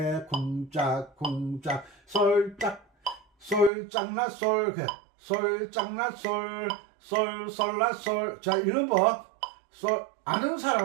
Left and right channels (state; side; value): drops out; left; at 3.7 s